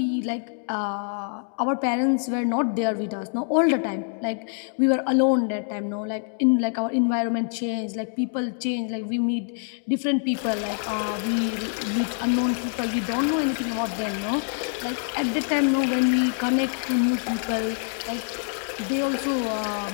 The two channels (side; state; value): right; silent; 61 dB below the other